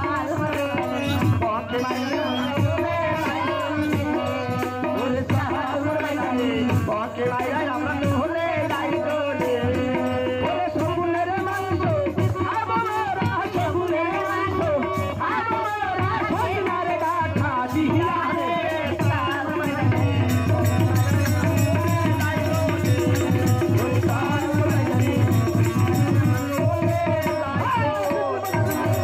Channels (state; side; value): identical; both; correlation 1.00